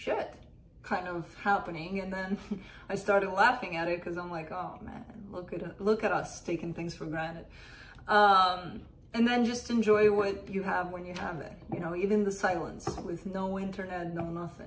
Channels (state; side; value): identical; both; correlation 1.00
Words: kind of happening, and then I started laughing at it because I'm like, oh man, look at us taking things for granted. And then just enjoy what you have when you have it. You know, even the silence with no internet, no